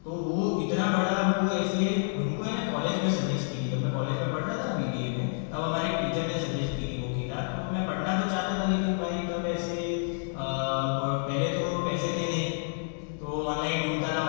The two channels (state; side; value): silent; right; digital silence